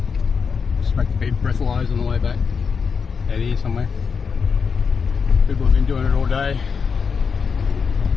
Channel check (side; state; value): right; quieter; 5.8 dB